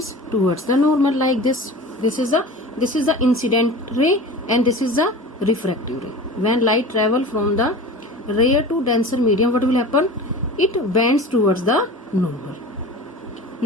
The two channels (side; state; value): both; normal; correlation 0.35